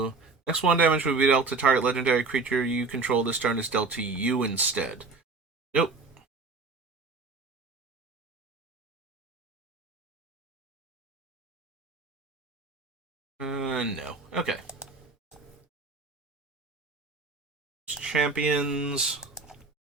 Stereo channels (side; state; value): left; quieter; 4.0 dB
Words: Next 1 damage would be dealt to target legendary creature you control this turn is dealt to you instead. Nope. No. Okay. Champions.